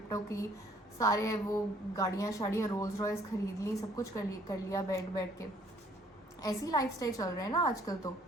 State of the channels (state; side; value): normal; both; correlation 0.61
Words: की, सारे वो गाड़ियाँ शाड़ियाँ, रोल्स रॉयस खरीद ली, सब कुछ कर लिया बैठ के। ऐसी लाइफस्टाइल चल रहे हैं ना आजकल तो